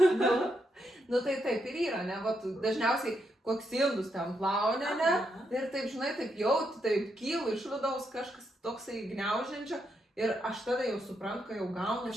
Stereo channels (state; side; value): normal; both; correlation 0.80